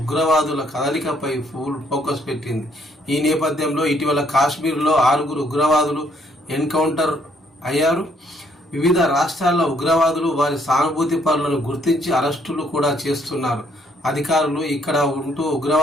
కదలికపై ఫుల్ ఫోకస్ పెట్టింది. ఈ నేపథ్యంలో ఇటీవల కాశ్మీర్లో 6 ఉగ్రవాదులు ఎన్కౌంటర్ అయ్యారు. వివిధ రాష్ట్రాల్లో ఉగ్రవాదులు వారి సానుభూతి పరులను గుర్తించి అరెస్టులు కూడా చేస్తున్నారు. అధికారులు ఇక్కడ ఉంటూ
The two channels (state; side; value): normal; both; correlation 0.68